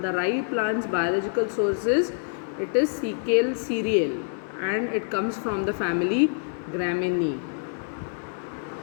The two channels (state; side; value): silent; right; digital silence